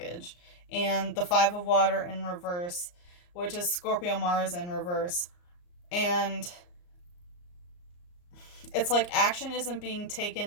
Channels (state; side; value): late; right; 34 ms